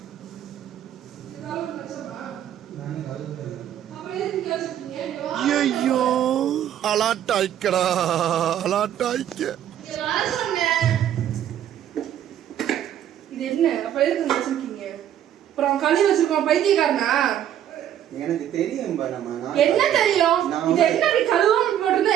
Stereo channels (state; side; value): quieter; left; 10.7 dB